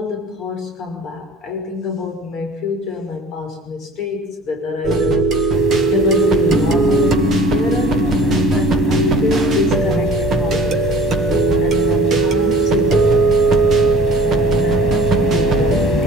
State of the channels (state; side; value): normal; both; correlation 0.47